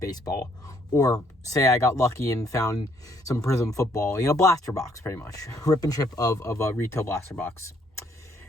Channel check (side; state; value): both; normal; correlation 0.68